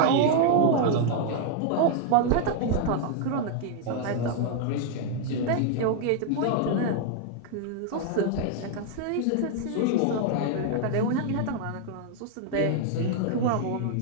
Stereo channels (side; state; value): both; different; correlation 0.00